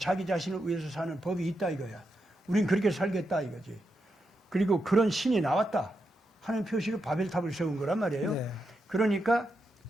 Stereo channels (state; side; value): normal; both; correlation 0.85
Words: 자신을 위해서 사는 법이 있다 이거야. 우린 그렇게 살겠다 이거지. 그리고 그런 신이 나왔다 하는 표시로 바벨탑을 세운 거란 말이에요. 네. 그러니까